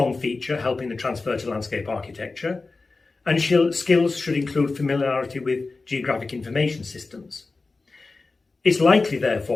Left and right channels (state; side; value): quieter; right; 3.8 dB